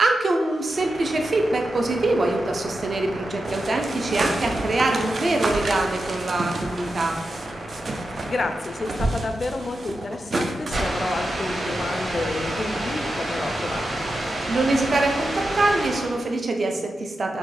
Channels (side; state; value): both; normal; correlation 0.89